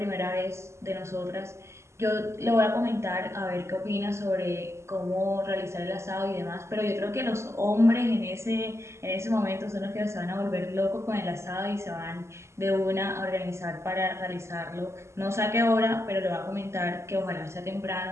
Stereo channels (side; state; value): left; late; 0.13 ms